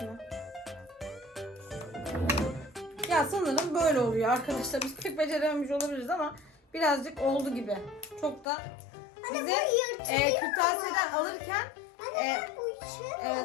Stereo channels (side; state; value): right; drops out; at 8.5 s